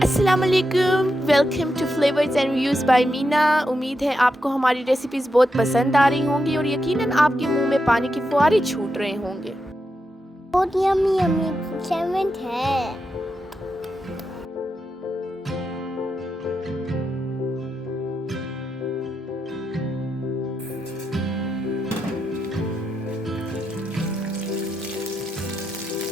वालेकुम, welcome to flavours and reviews by Meena. उम्मीद है आपको हमारी रेसिपीज़ बहुत पसंद आ रही होंगी और यकीनन आपके मुंह में पानी के फुहारे छूट रहे होंगे। बहुत यम्मी यम्मी सैंडविच है।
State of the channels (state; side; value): normal; both; correlation 0.86